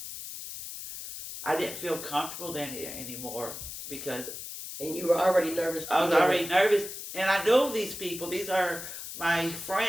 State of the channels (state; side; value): noise; left; hiss, 9 dB below the sound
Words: I didn't feel comfortable then anymore because And you were already nervous. I was already nervous. And I know these people. These are my